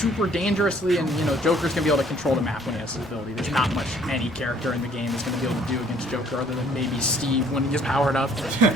dangerously, and, you know, Joker's going to be able to control the map when he has his ability. There's not much any character in the game is going to be able to do against Joker other than maybe Steve when he gets powered up.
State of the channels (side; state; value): both; normal; correlation 0.59